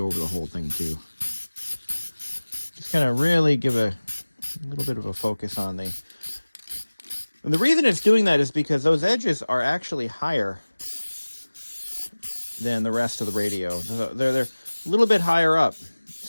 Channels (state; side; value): inverted; both; correlation -1.00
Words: over the whole thing too. Just kind of really give a little bit of a focus on the... And the reason it's doing that is because those edges are actually higher than the rest of the radio. They're a little bit higher up.